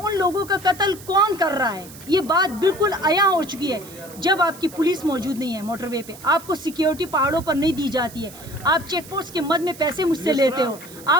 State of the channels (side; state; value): right; noise; hiss, 18 dB below the sound